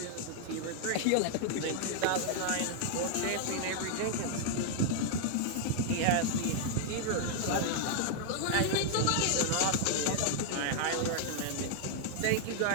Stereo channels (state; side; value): different; both; correlation 0.00